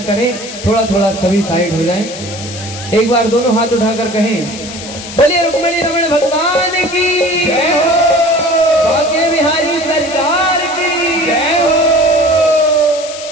करें। थोड़ा थोड़ा सभी साइड हो जाएं। एक बार दोनों हाथ उठाकर कहें, बोलिए रुक्मणी रमण भगवान की जय हो, बांके बिहारी सरकार की जय हो।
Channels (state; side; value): noise; left; hiss, 12 dB below the sound